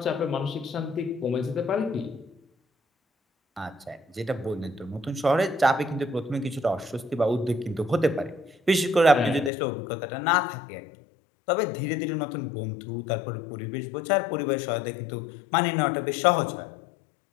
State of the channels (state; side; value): drops out; right; at 9.5 s